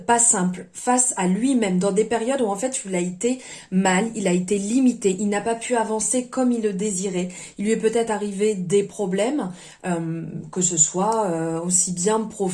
pas simples, face à lui-même, dans des périodes où en fait il a été mal, il a été limité, il n'a pas pu avancer comme il le désirait. Il lui est peut-être arrivé des problèmes, que ce soit aussi bien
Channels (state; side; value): identical; both; correlation 1.00